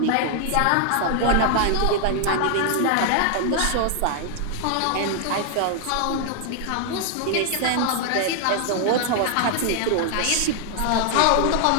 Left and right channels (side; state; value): both; different; correlation 0.00